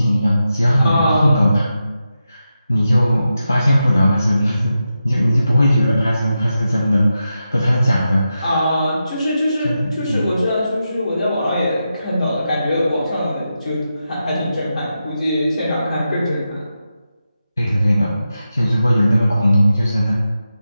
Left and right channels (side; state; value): both; inverted; correlation -0.88